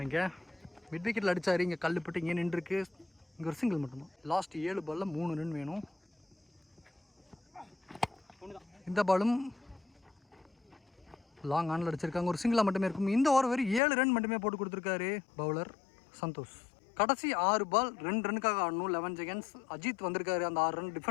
இங்கே மிட் விக்கெட்டில் அடித்தார். இங்கே கல்லுப்பட்டு இங்கே நின்றுருக்கு. இங்கே ஒரு சிங்கிள் மட்டும்தான். லாஸ்ட் 7 பாலில் 3 ரன் வேணும். இந்த பாலும் லாங் ஆனில் அடிச்சிருக்காங்க. ஒரு சிங்கிளாக மட்டுமே இருக்கும். இந்த ஓவர் வெறும் 7 ரன் மட்டுமே போட்டு கொடுத்துருக்காரு பவுலர் சந்தோஷ். கடைசி 6 பால் 2 ரன்னுக்காக ஆடணும். 11 செகண்ட்ஸ். அஜித் வந்திருக்காரு அந்த 6 ரன்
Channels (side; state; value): right; drops out; at 13.8 s